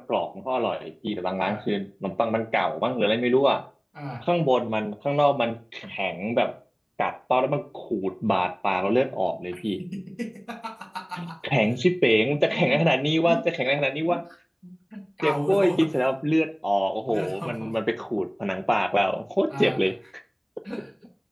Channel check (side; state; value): both; identical; correlation 1.00